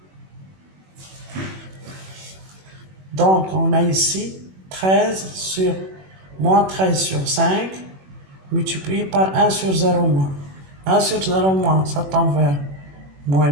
Donc, on a ici 13 sur moins 13 sur 5 multiplié par 1 sur 0 moins. 1 sur 0 moins, ça tend vers moins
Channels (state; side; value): late; left; 21 ms